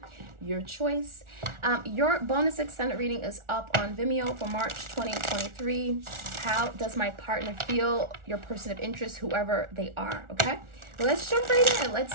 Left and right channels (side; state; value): left; late; 1.4 ms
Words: your choice. Your bonus extended reading is up on Vimeo for March 2023. How does my partner feel? Your person of interest, whoever they are, okay? Let's jump right in.